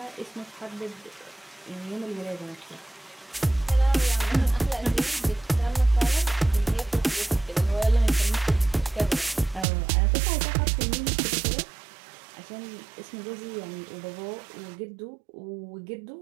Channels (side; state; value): left; drops out; at 9.7 s